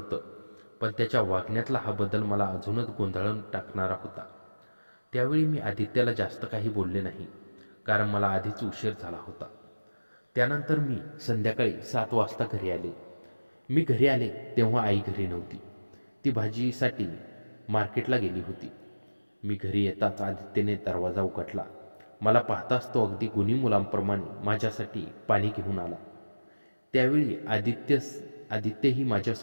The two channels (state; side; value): inverted; both; correlation -1.00